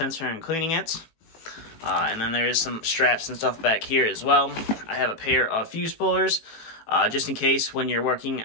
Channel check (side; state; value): right; late; 18 ms